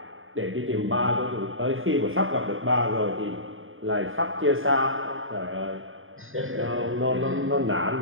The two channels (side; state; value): left; late; 0.59 ms